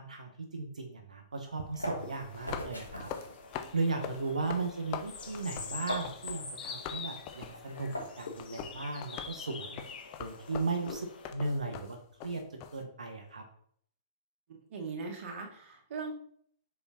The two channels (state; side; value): inverted; both; correlation -0.62